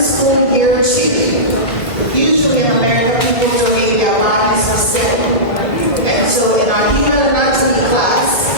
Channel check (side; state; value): right; late; 1.6 ms